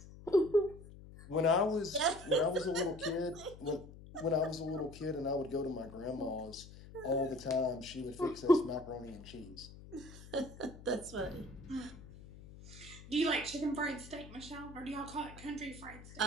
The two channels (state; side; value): noise; left; hum, 17 dB below the sound